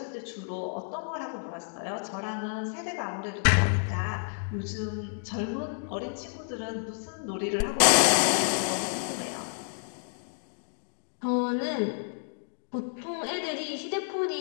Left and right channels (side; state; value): right; silent; digital silence